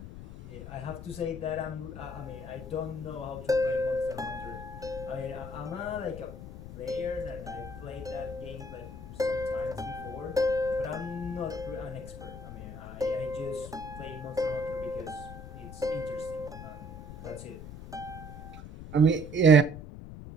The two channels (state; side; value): noise; left; rumble, 11 dB below the sound